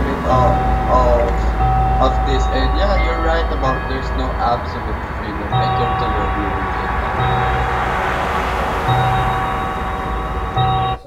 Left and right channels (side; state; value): both; identical; correlation 1.00